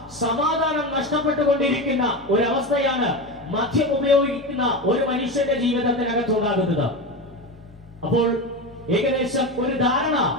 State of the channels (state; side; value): normal; both; correlation 0.21